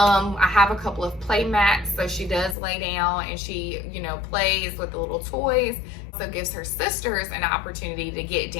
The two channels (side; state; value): right; drops out; at 2.6 s